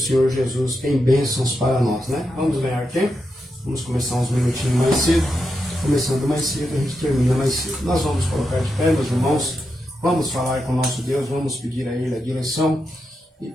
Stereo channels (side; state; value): both; normal; correlation 0.86